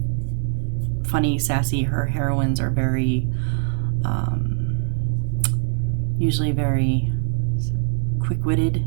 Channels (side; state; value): left; silent; digital silence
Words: funny, sassy. Her heroines are very, usually very quick-witted,